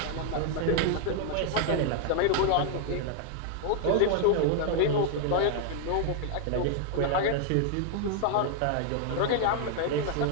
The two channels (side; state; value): both; different; correlation 0.00